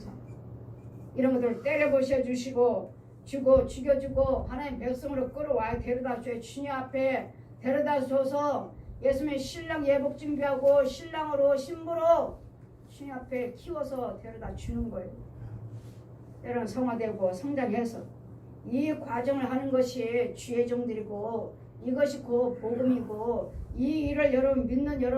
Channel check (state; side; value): identical; both; correlation 1.00